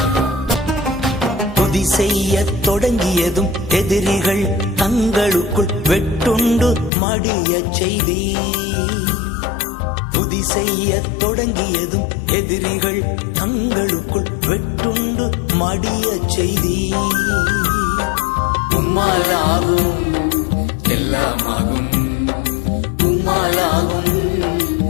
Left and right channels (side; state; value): right; drops out; at 6.9 s